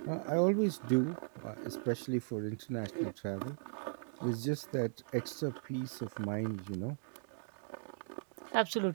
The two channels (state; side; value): silent; left; digital silence